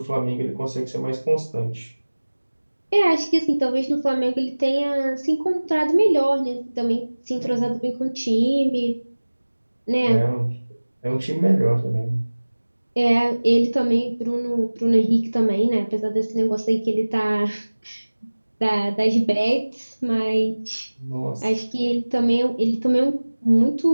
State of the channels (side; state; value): both; inverted; correlation -1.00